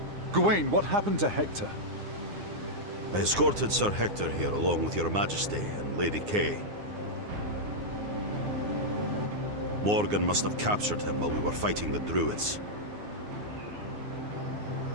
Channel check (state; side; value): late; left; 9.7 ms